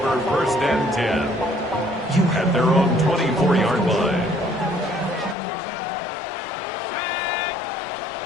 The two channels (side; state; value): right; drops out; at 5.4 s